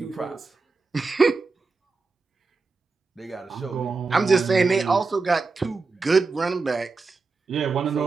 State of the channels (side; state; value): left; quieter; 4.1 dB